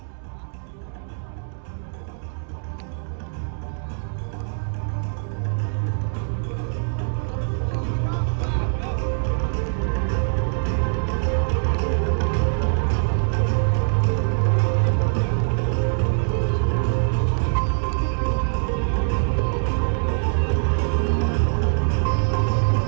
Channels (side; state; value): left; silent; digital silence